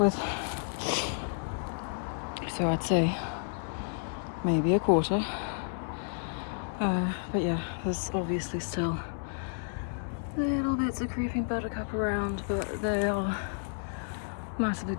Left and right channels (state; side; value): silent; right; digital silence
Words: So I'd say maybe a quarter. But yeah, there's obviously still little bits of creeping buttercup around, but they are massively